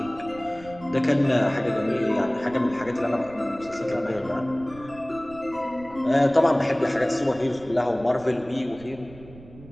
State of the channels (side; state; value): right; noise; rumble, 20 dB below the sound